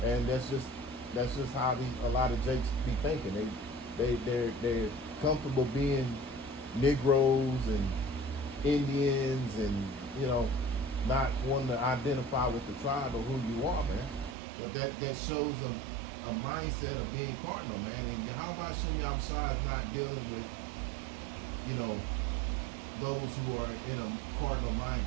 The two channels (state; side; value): drops out; left; at 14.4 s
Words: and that's just how a lot of Jakes be thinking. They're comfortable being Negroes and Indians and, you know, not wanting to identify with the tribe of who you are, man. But that shows a mindset of being cardinal, man. And how about Shem Yahshua is not dealing with, you know, those who are in a cardinal